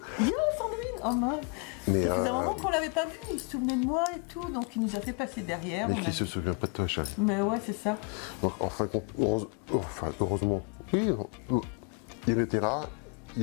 Viens Sandrine, oh mince. Mais ça faisait un moment qu'on l'avait pas vu, il se souvenait de moi et tout, donc il nous a fait passer derrière. Mais qui se souvient pas de toi, Charlie. Mais ouais, c'est ça. Donc, heureusement, oui, il était là,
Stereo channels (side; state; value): right; quieter; 34.6 dB